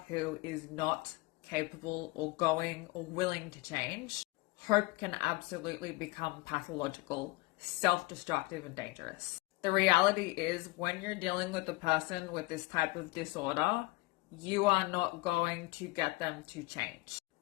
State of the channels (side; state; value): right; quieter; 23.1 dB